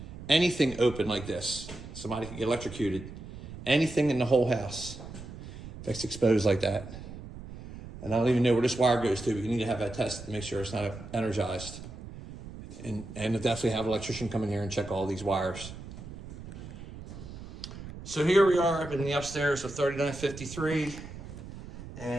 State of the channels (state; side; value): noise; right; rumble, 13 dB below the sound